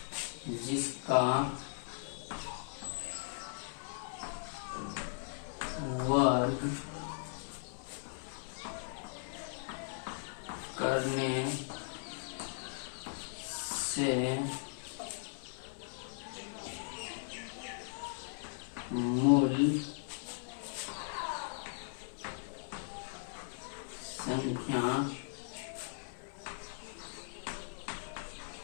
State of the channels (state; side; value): silent; right; digital silence